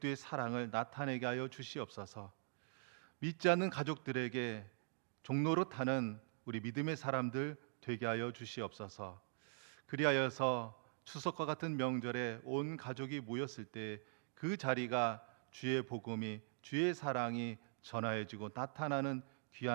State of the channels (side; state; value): left; silent; digital silence